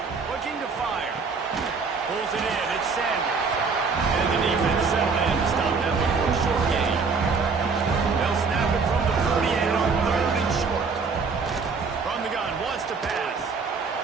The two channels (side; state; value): left; quieter; 4.9 dB